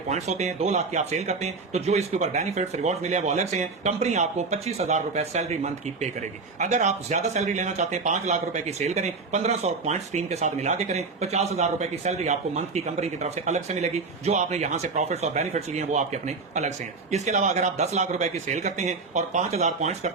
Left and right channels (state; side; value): quieter; left; 4.2 dB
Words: होते हैं, 2 लाख की आप सेल करते हैं, तो जो इसके ऊपर बेनिफिट्स रिवॉर्ड मिले वो अलग से हैं। कंपनी आपको 25,000 रुपए सैलरी मंथ की पे करेगी। अगर आप ज्यादा सैलरी लेना चाहते हैं, 5 लाख रुपए की सेल करें, 1500 पॉइंट्स टीम के साथ मिला के करें, 50,000 रुपए की सैलरी आपको मंथ की कंपनी की तरफ से अलग से मिलेगी। जो आपने यहां से प्रॉफिट्स और बेनिफिट्स लिए हैं वो आपके अपने अलग से हैं। इसके अलावा अगर आप 10 लाख रुपए की सेल करते हैं और 5000 पॉइंट्स